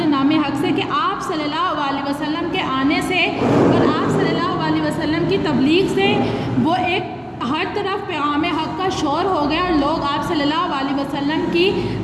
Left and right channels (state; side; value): identical; both; correlation 1.00